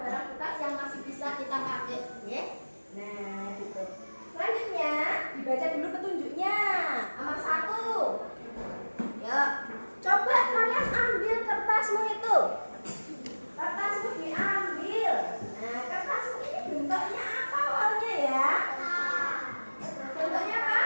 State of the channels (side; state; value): both; inverted; correlation -1.00